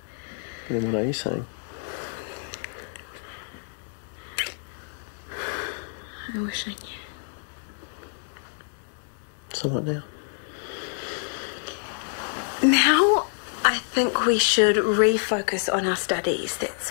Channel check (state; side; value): silent; right; digital silence